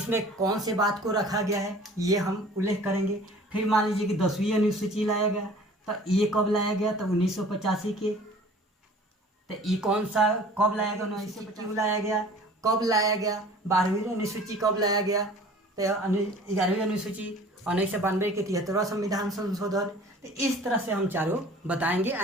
कौन से बात को रखा गया है ये हम उल्लेख करेंगे। फिर मान लीजिए कि 10वीं अनुसूची लाया गया, तो ये कब लाया गया? तो 1985 के। तो ये कौन सा कब लाया गया? 1985 लाया गया। कब लाया गया? 12वीं अनुसूची कब लाया गया? तो 11वीं अनुसूची 1992 के 73वां संविधान संशोधन। तो इस तरह से हम चारों बताएंगे,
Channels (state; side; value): normal; both; correlation 0.47